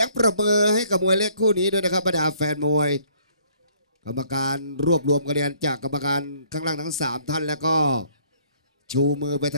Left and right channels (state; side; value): inverted; both; correlation -0.62